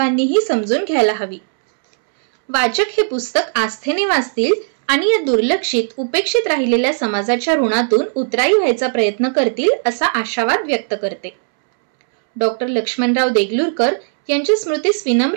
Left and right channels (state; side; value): silent; left; 68 dB below the other